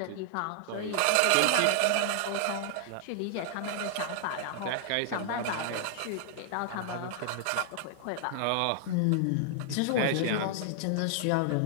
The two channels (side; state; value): both; different; correlation -0.01